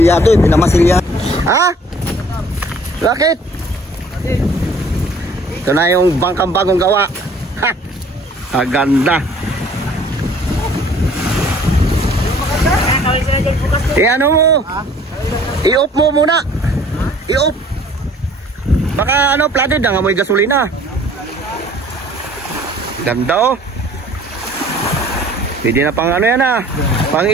Pinamasilyado. Ha? Bakit? Ito na yung bangkang bagong gawa. Ha! Ang ganda. Ano mo? I-off mo muna. I-off. Baka flooded na, amoy gasolina. Ganda oh. Pwede na pang yan pang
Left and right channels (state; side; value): normal; both; correlation 0.53